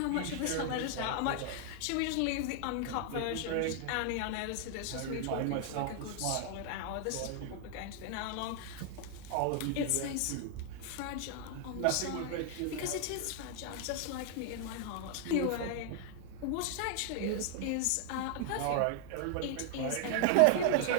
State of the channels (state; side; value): different; both; correlation 0.00